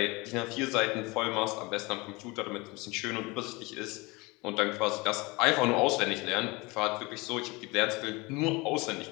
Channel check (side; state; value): right; quieter; 24.9 dB